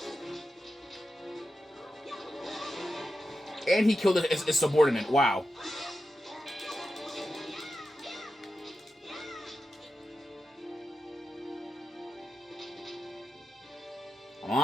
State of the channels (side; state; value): both; normal; correlation 0.90